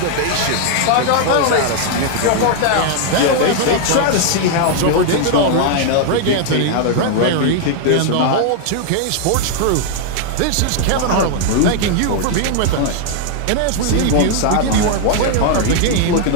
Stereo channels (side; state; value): both; different; correlation 0.00